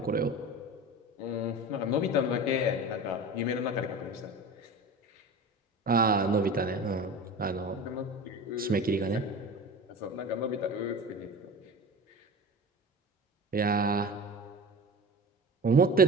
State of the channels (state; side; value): normal; both; correlation 0.34